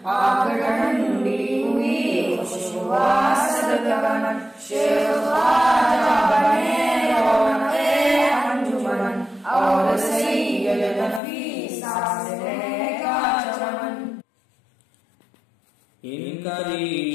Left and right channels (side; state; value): right; drops out; at 11.2 s